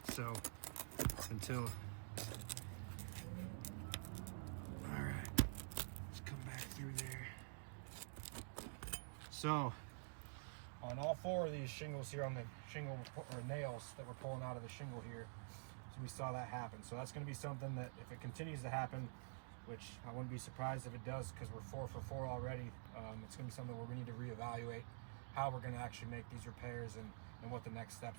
So until, all right, let's come back through there. So on all 4 of these shingles here, on the shingle or nails that we're pulling out of the shingle here, we saw that happen. So that's going to be something that if it continues to happen, which I wouldn't be surprised if it does, because we're 4 for 4 already, it's going to be something where we need to reevaluate how we're going to actually make these repairs and what the next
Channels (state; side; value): silent; left; digital silence